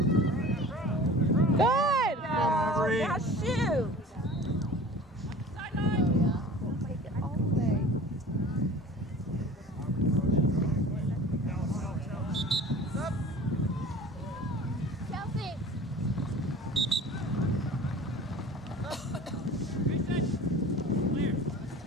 Good. Aubrey. Now shoot.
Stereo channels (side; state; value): both; normal; correlation 0.42